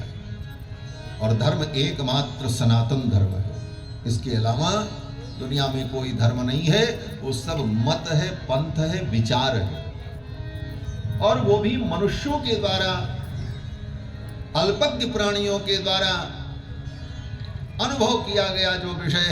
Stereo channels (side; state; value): both; identical; correlation 1.00